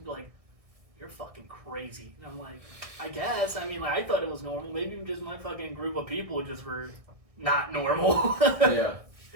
be like, "You're fucking crazy." And I'm like, "I guess. I mean, like I thought it was normal. Maybe just my fucking group of people just were not normal." Yeah.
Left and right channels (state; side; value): late; left; 1.6 ms